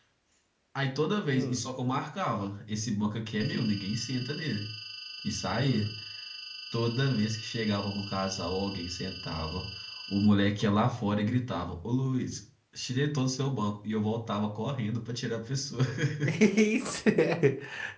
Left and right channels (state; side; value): identical; both; correlation 1.00